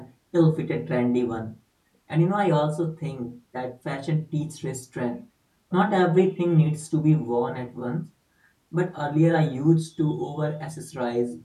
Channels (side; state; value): both; identical; correlation 1.00